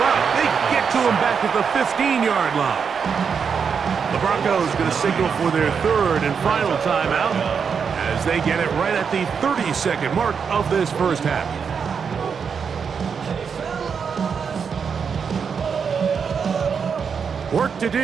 They get to him back at the 15-yard line. The Broncos going to signal for their third and final timeout as they get it right at the 30-second mark of this first half. Work to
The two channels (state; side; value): quieter; left; 6.4 dB